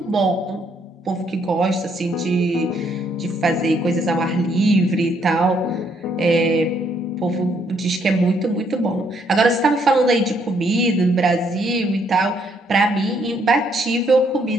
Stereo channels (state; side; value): normal; both; correlation 0.70